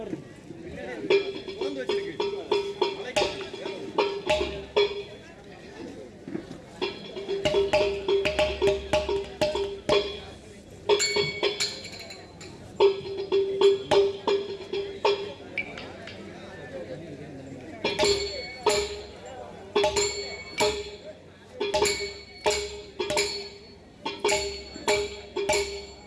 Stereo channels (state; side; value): identical; both; correlation 1.00